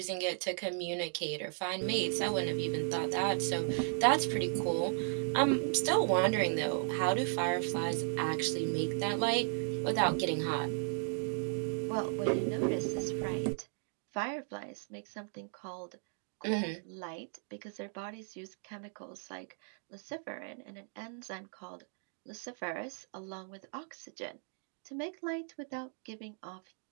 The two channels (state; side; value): silent; left; 54 dB below the other